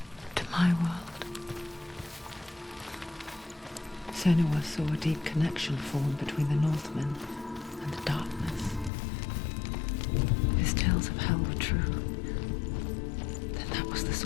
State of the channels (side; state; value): right; drops out; at 8.9 s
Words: To my world. Senua saw a deep connection form between the Northmen and the darkness. His tales of hell were true. Then that was the